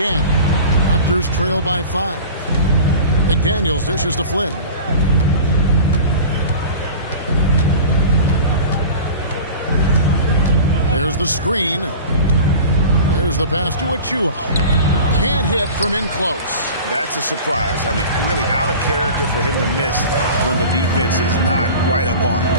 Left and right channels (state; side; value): inverted; both; correlation -0.37